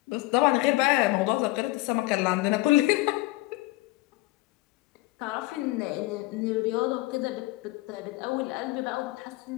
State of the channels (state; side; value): quieter; right; 20.1 dB